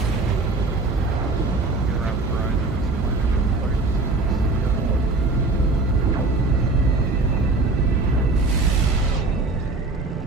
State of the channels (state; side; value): quieter; left; 3.4 dB